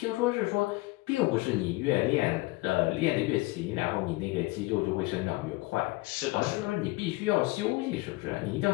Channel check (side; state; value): right; quieter; 22.0 dB